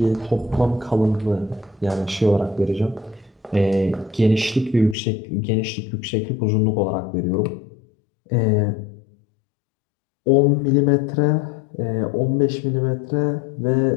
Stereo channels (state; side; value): drops out; right; at 5.0 s